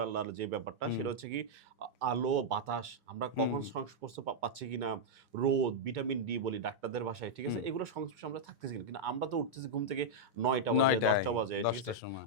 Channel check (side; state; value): both; normal; correlation -0.04